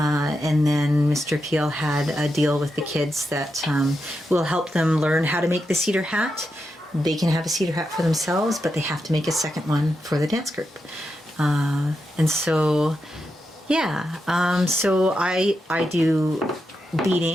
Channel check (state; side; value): normal; both; correlation 0.86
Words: then Mr. Peel had a deal with the kids that will help them learn how to make the cedar hat. They can have a cedar hat for themselves, but they have to make a second one for the dance group. So I do